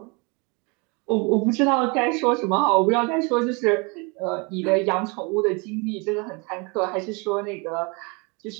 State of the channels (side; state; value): left; quieter; 30.3 dB